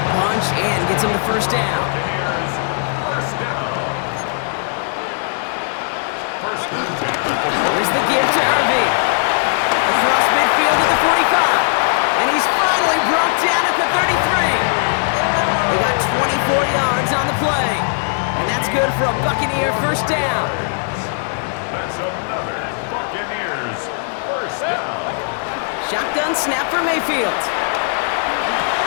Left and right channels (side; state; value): right; silent; 59 dB below the other